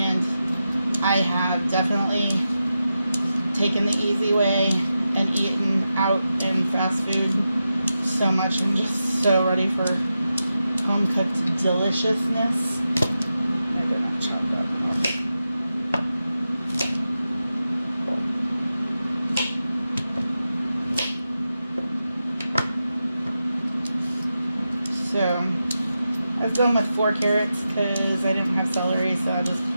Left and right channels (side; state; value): both; inverted; correlation -0.90